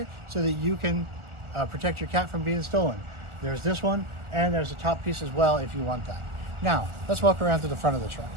so that you can protect your cat from being stolen. There's this one, and there's a top piece as well if you want that. Now, let's walk around to the front of the truck.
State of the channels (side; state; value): left; late; 1.4 ms